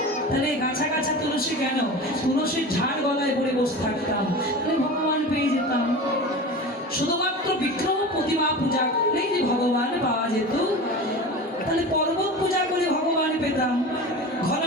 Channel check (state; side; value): normal; both; correlation 0.32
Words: তাহলে গাছা গাছা তুলসী কেন তুলসীর ঝাড় গলায় পড়ে বসে থাকতাম তাহলে ভগবান পেয়ে যেতাম। শুধুমাত্র বিগ্রহ প্রতিমা পূজা করলেই যে ভগবান পাওয়া যেত তাহলে পর্বত পূজা করে ভগবান পেতাম। ঘন